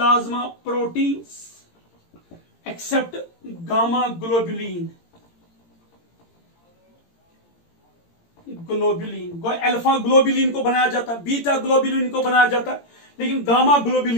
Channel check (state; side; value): late; right; 18 ms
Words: proteins except gamma globulin. Globulin, alpha globulin को बनाया जाता है, बीटा ग्लोबुलिन को बनाया जाता है, लेकिन गामा